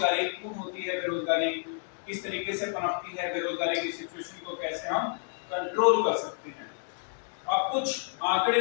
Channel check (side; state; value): right; silent; 58 dB below the other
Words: क्यों होती है, बेरोजगारी किस तरीके से पनपती है, बेरोजगारी की सिचुएशन को कैसे हम कंट्रोल कर सकते हैं। अब कुछ आंकड़े